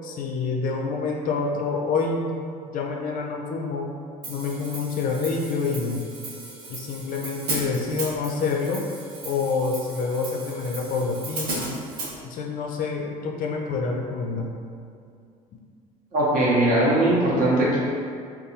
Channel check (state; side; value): normal; both; correlation 0.34